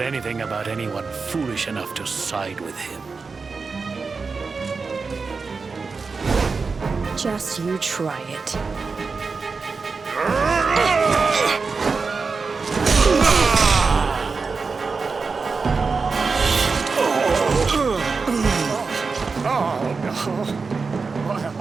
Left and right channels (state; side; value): quieter; left; 4.6 dB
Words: anything about anyone foolish enough to side with him. Just you try it.